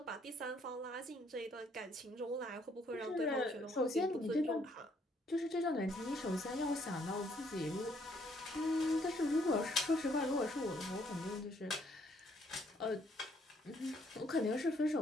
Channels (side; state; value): both; normal; correlation 0.68